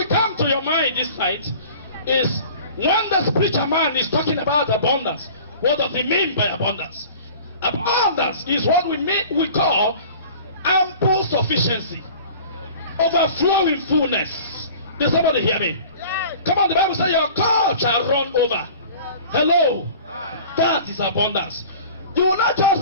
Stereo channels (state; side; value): inverted; both; correlation -0.43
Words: come to your mind this night is when the spiritual man is talking about abundance, what does he mean by abundance? Abundance is what we call ample sufficiency, overflowing fullness. Did somebody hear me? Come on, the Bible says your cup shall run over. Hello. That is abundance. You will not